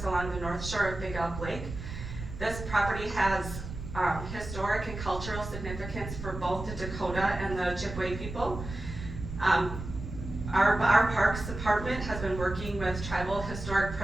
along the north shore of Big Elk Lake. This property has historic and cultural significance for both the Dakota and the Ojibwe people. Our Parks Department has been working with tribal historic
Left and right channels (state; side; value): noise; right; rumble, 9 dB below the sound